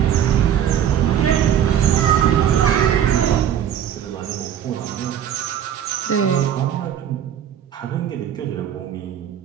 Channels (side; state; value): left; quieter; 9.6 dB